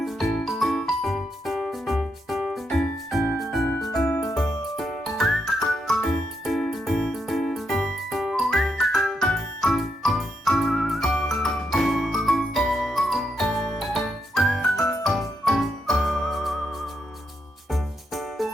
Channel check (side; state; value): both; normal; correlation 0.80